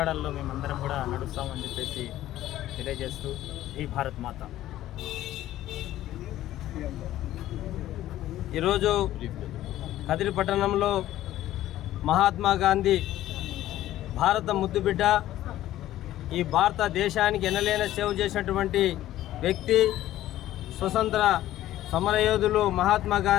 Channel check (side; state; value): right; quieter; 13.9 dB